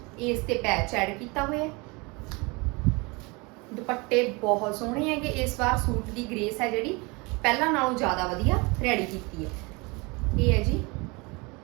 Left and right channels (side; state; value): left; quieter; 27.0 dB